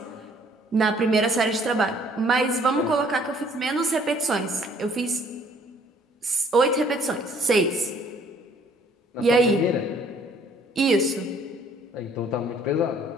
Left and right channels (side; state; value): both; normal; correlation 0.59